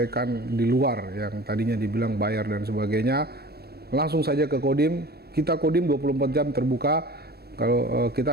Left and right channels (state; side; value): late; left; 0.46 ms